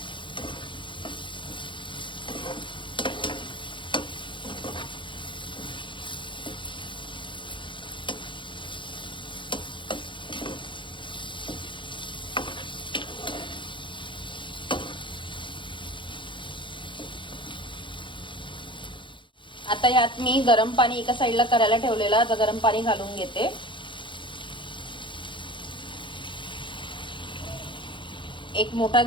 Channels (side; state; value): right; late; 0.24 ms